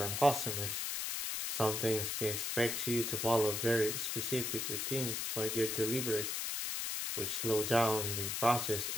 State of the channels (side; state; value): left; noise; hiss, 1 dB below the sound